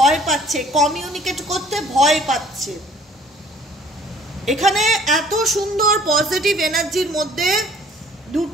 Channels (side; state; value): both; normal; correlation 0.55